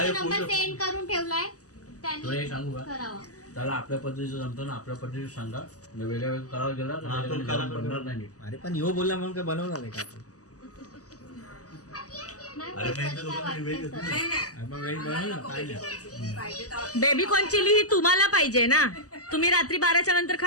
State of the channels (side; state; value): right; late; 0.67 ms